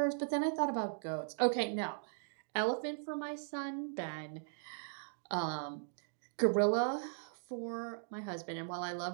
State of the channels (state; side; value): silent; left; digital silence